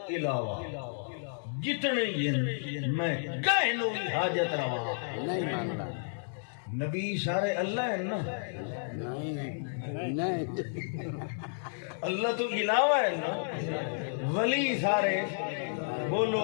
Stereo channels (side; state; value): right; silent; digital silence